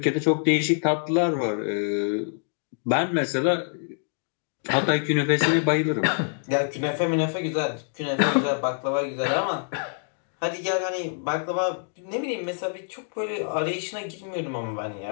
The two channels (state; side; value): silent; right; digital silence